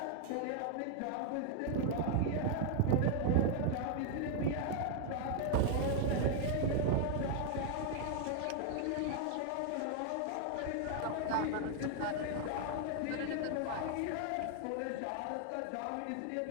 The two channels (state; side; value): different; both; correlation 0.00